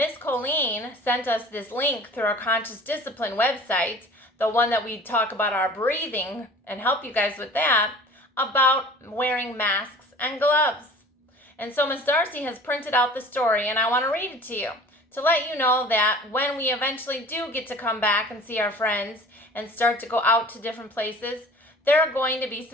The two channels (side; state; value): both; normal; correlation 0.44